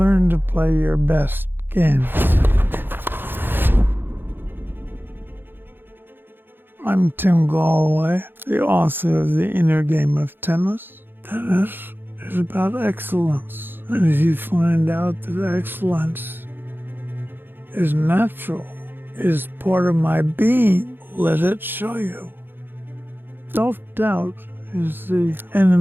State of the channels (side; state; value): left; late; 0.099 ms